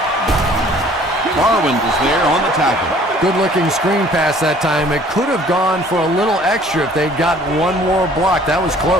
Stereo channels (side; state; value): both; normal; correlation 0.54